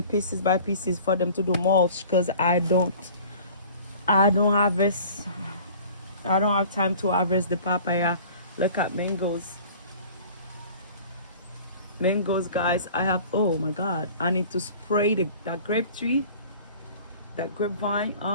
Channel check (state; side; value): inverted; both; correlation -0.45